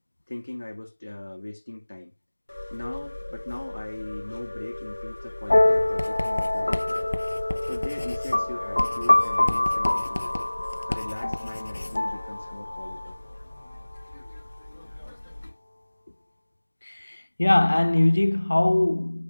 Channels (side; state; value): both; inverted; correlation -1.00